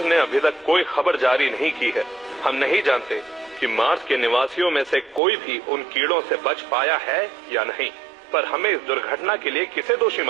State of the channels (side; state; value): left; drops out; at 5.2 s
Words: ने अभी तक कोई खबर जारी नहीं की है। हम नहीं जानते कि मार्स के निवासियों में से कोई भी उन कीड़ों से बच पाया है या नहीं, पर हमें इस दुर्घटना के लिए किसे दोषी